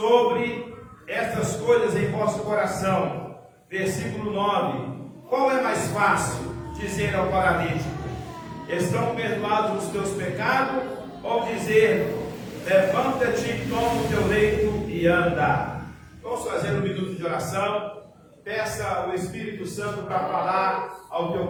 estas coisas em vosso coração? Versículo 9. Qual é mais fácil dizer ao paralítico: Estão perdoados os teus pecados? Ou dizer: Levanta-te, toma o teu leito e anda? Vamos fazer um minuto de oração. Peça o Espírito Santo para falar ao teu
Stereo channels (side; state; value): both; identical; correlation 1.00